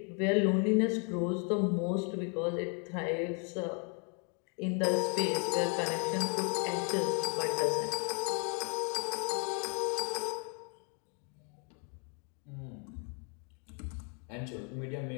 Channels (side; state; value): right; quieter; 38.2 dB